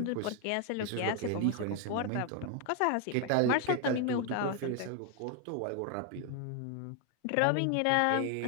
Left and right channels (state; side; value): different; both; correlation 0.01